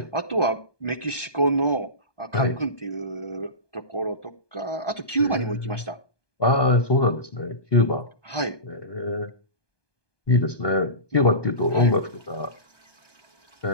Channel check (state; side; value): late; right; 1.2 ms